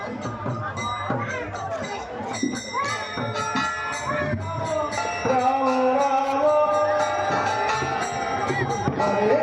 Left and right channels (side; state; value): both; identical; correlation 1.00